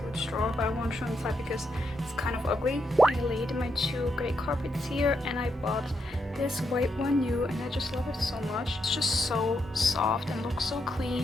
drawer, but I won't show inside because it's kind of ugly. I laid my two gray carpets here, and I bought this white one new, and I just love it so much. It's just so soft and looks so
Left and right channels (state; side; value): normal; both; correlation 0.80